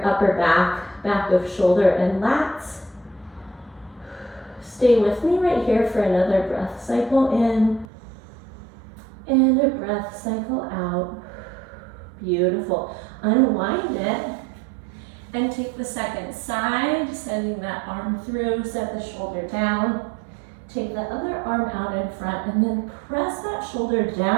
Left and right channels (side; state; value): left; drops out; at 7.9 s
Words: upper back, back of shoulder and lats. Stay with me right here for another breath cycle in and a breath cycle out. Beautiful. Unwind it and take the second side, sending that arm through, set the shoulder down. Take the other arm out in front and then press that shoulder